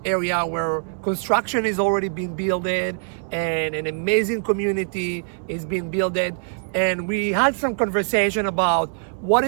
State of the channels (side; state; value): left; silent; 63 dB below the other